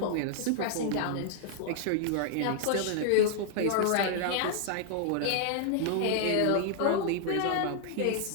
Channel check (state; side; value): different; both; correlation -0.01